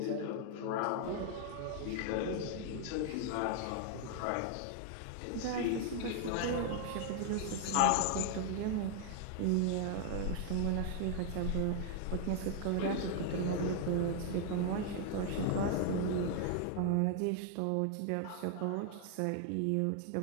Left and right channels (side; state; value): both; different; correlation 0.00